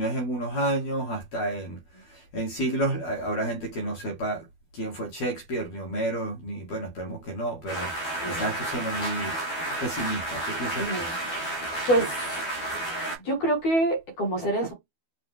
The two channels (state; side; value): late; right; 12 ms